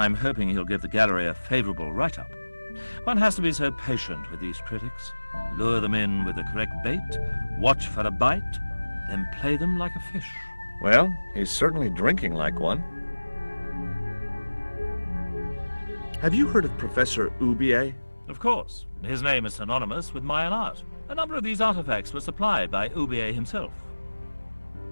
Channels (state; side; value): inverted; both; correlation -1.00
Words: hoping he'll give the gallery a favorable write-up. One has to be so patient with these critics. Lure them in with the correct bait, watch for a bite, then play them like a fish. Well, he's certainly drinking like one. Have you heard of Professor Oubier? Of course. His name is synonymous with Mayan art. A number of these artifacts were supplied by Oubier himself.